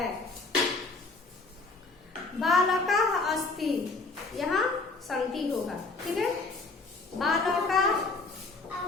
बालका अस्ति, यहाँ संति होगा, ठीक है। बालका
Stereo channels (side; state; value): right; quieter; 3.6 dB